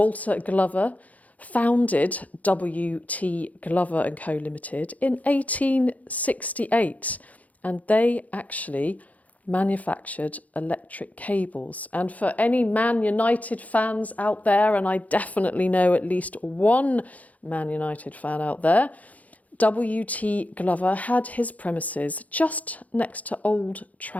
Glover founded W.T. Glover & Co Limited in 1868, and they actually manufactured electric cables. And for any Man United fans out there, and I definitely know at least one Man United fan out there, W.T. Glover had his premises just next to Old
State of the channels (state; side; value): late; right; 0.073 ms